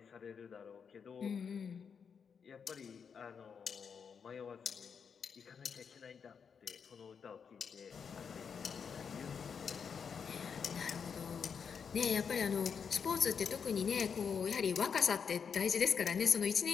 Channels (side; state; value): right; quieter; 6.5 dB